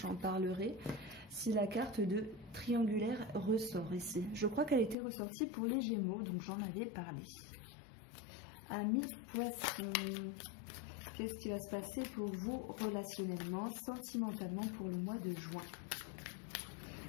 j'en parlerai, si la carte de triangulaire ressort ici. Je crois qu'elle était ressortie pour les Gémeaux, donc j'en avais parlé. Amis poissons, qu'est-ce qui va se passer pour vous relationnellement, sentimentalement pour le mois de juin?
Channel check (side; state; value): right; drops out; at 5.0 s